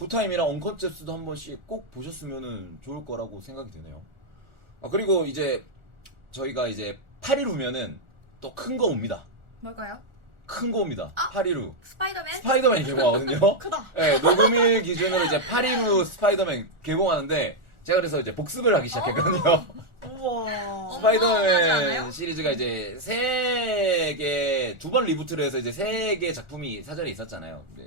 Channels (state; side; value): late; left; 1.4 ms